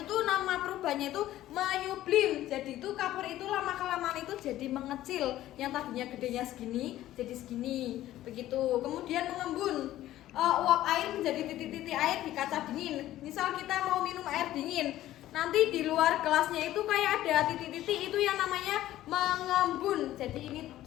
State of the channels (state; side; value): quieter; right; 14.1 dB